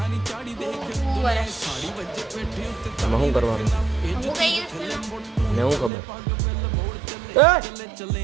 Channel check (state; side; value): drops out; left; at 5.9 s